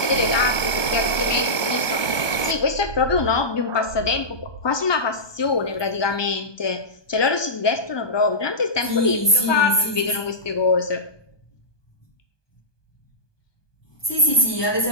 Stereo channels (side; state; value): right; late; 1.2 ms